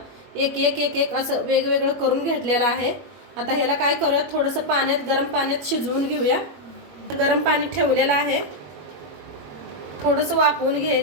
एक एक एक एक असं वेगवेगळं करून घेतलेलं आहे. आता ह्याला काय करूया, थोडंसं पाण्यात गरम पाण्यात शिजवून घेऊया. गरम पाणी ठेवलेलं आहे, थोडंसं वाफवून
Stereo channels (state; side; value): late; left; 21 ms